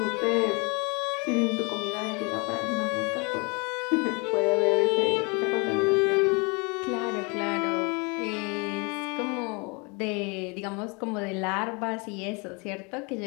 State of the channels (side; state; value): right; quieter; 30.3 dB